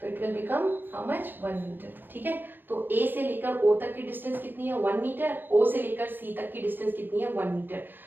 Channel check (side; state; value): left; late; 0.094 ms